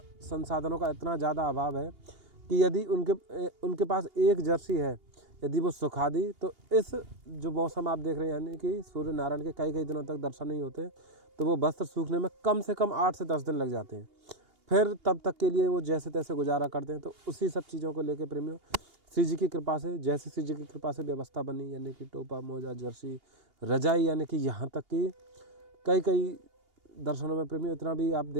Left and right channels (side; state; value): left; late; 2.8 ms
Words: संसाधनों का इतना ज़्यादा अभाव है कि यदि उनके पास एक जर्सी है, यदि वो सुखा दी, तो इस जो मौसम आप देख रहे हैं, यानी कि सूर्य नारायण के कई कई दिनों तक दर्शन नहीं होते, तो वो वस्त्र सूखने में कम से कम 8 से 10 दिन लग जाते हैं। फिर तब तक के लिए वो जैसे तैसे गुजारा करते हैं। तो उसी सब चीज़ों को लेके प्रेमियों, श्री जी की कृपा से, जैसे श्री जी की कृपा से व्यवस्था बनी, यानी कि टोपा, मोजा, जर्सी, रजाई, यानी कि यहाँ तक कि कई कई दर्शनों में प्रेमियों इतना भी आप